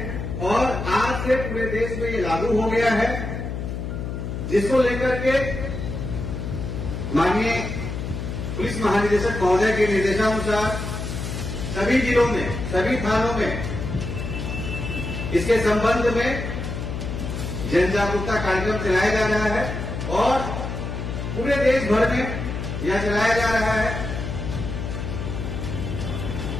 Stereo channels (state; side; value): noise; left; hum, 5 dB below the sound